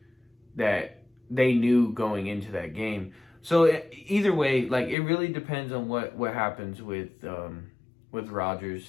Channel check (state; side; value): drops out; right; at 5.0 s